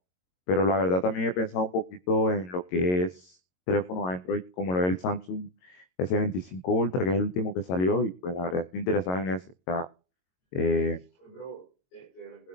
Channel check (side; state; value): right; late; 22 ms